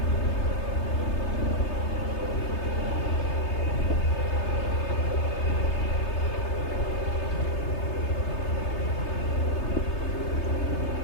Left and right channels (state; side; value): late; right; 3.3 ms